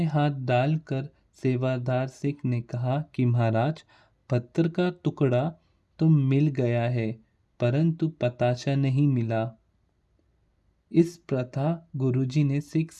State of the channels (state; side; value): identical; both; correlation 1.00